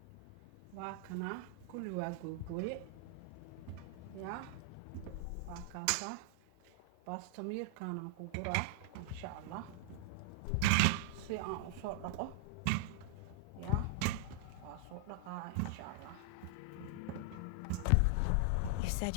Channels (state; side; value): different; both; correlation -0.01